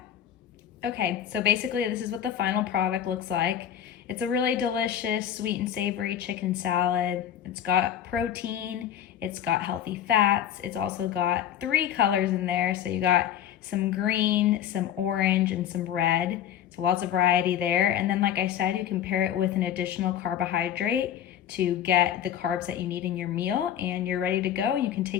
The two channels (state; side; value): quieter; right; 10.2 dB